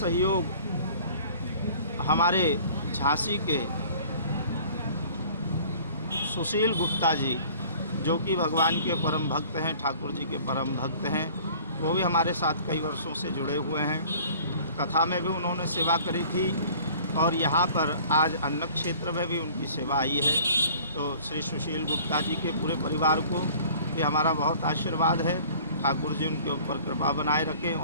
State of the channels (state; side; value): inverted; both; correlation -0.49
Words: हमारे झांसी के सुशील गुप्ता जी, जो कि भगवान के परम भक्त हैं, ठाकुर जी के परम भक्त हैं, वो भी हमारे साथ कई वर्षों से जुड़े हुए हैं। कथा में भी उन्होंने सेवा करी थी और यहाँ पर आज अन्न क्षेत्र में भी उनकी सेवा आई है। तो श्री सुशील गुप्ता जी के पूरे परिवार को भी हमारा बहुत आशीर्वाद है। ठाकुर जी उनके ऊपर कृपा बनाए रखें